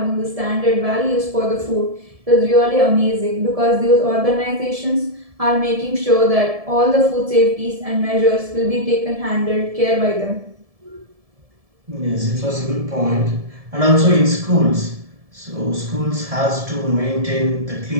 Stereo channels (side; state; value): left; late; 1.7 ms